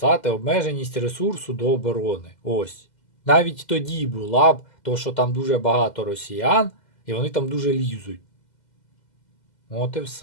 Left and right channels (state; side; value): late; right; 2.0 ms